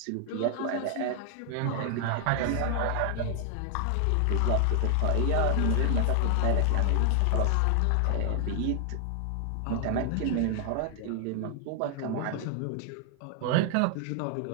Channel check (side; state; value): both; different; correlation 0.00